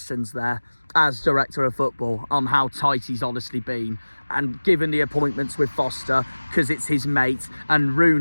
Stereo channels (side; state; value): both; inverted; correlation -1.00